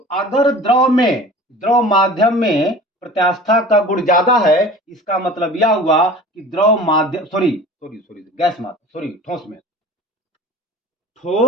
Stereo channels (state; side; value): normal; both; correlation 0.41